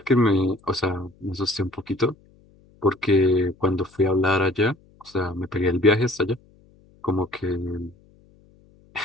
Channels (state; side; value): noise; left; hum, 30 dB below the sound